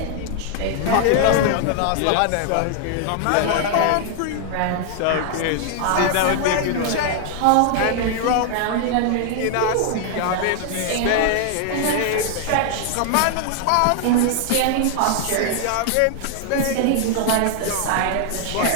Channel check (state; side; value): different; both; correlation 0.00